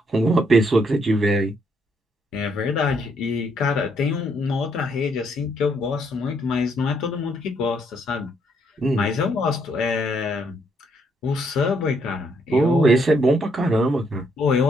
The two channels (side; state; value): both; normal; correlation 0.73